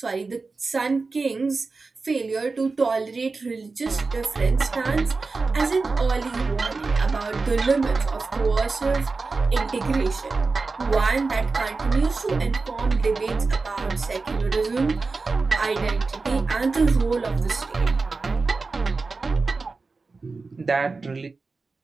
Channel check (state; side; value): quieter; left; 4.0 dB